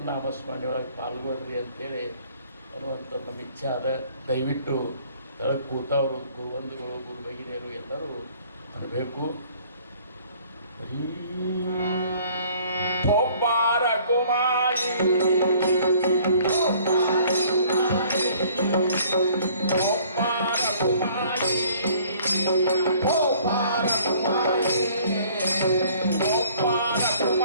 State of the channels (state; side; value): inverted; both; correlation -0.56